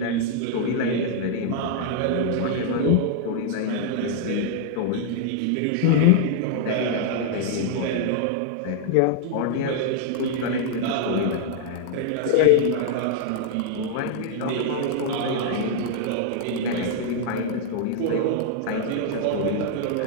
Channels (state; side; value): different; both; correlation -0.01